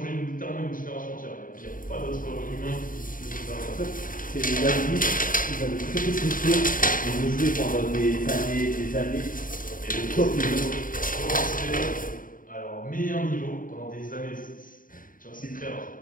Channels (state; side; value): late; right; 0.40 ms